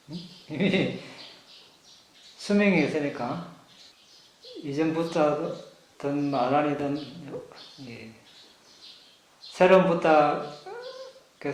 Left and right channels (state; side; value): identical; both; correlation 1.00